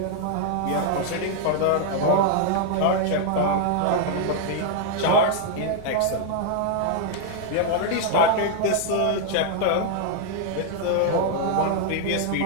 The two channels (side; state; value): both; different; correlation 0.00